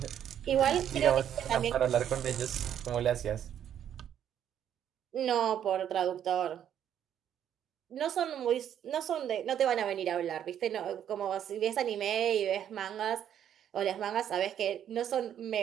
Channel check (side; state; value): left; quieter; 9.8 dB